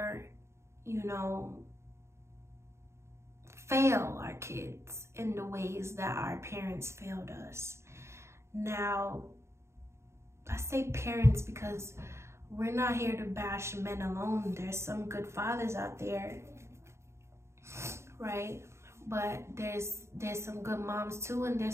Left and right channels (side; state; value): left; late; 0.13 ms